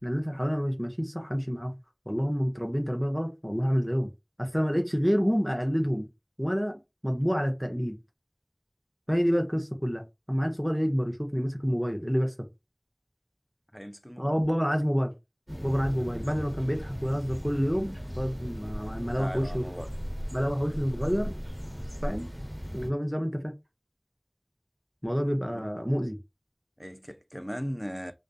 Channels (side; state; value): both; identical; correlation 1.00